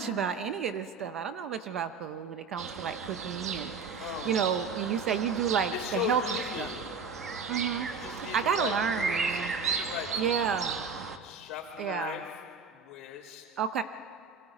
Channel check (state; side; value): quieter; left; 5.0 dB